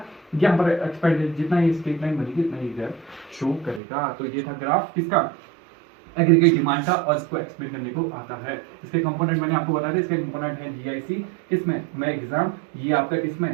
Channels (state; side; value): drops out; left; at 3.8 s